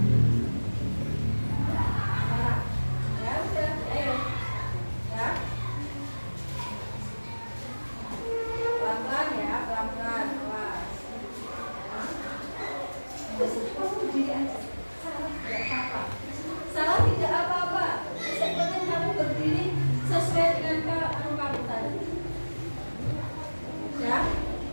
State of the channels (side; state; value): both; inverted; correlation -1.00